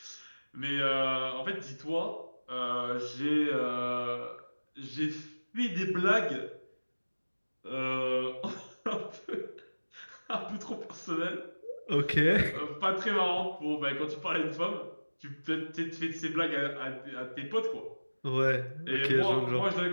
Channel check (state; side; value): inverted; both; correlation -1.00